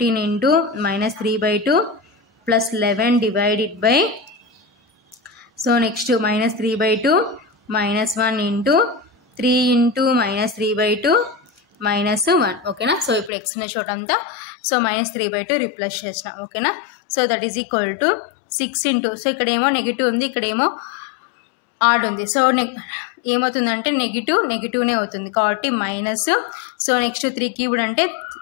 into -3/2 plus 11 divided by so next -3/2 -1 into 3 into -3/2 -1 ఓకేనా. So ఇప్పుడు x ఉన్న చోటంతా సో -3/2 రిప్లేస్ చేసినాం ఓకేనా. So that is equal to 6 into so ఇక్కడేమో నెగిటివ్ ఉంది, ఇక్కడేమో ఆడ్ ఉంది. సో ఏమవుతుందంటే నెగిటివ్నే అవుతుంది కాబట్టి మైనస్. సో నెక్స్ట్ 3³ అంటే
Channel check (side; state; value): right; drops out; at 13.3 s